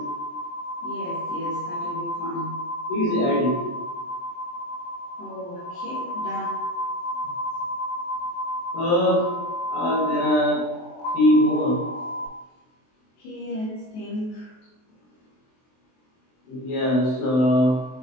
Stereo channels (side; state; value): right; late; 23 ms